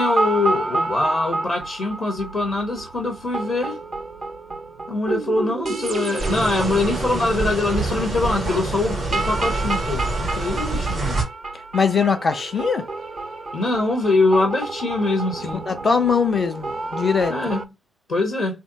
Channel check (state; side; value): normal; both; correlation 0.78